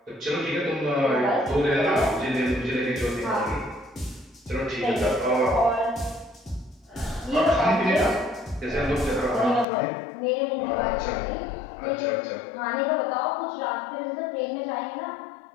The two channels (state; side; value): drops out; right; at 9.7 s